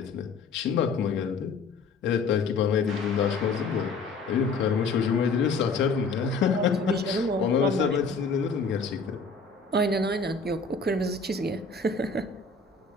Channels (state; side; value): quieter; right; 4.2 dB